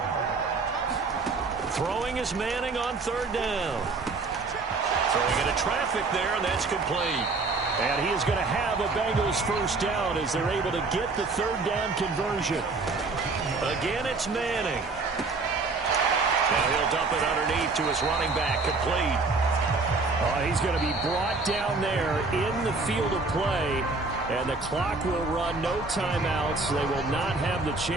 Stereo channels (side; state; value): left; quieter; 3.8 dB